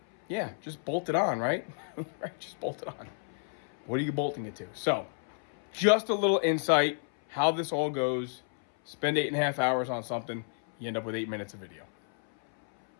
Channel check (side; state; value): right; silent; 57 dB below the other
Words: Yeah, just bolt it on, right? Right, just bolt it on. What are you bolting it to? So, just a little insight, how this all goes. Spend 8.5 hours on something, you end up with 8 minutes of video.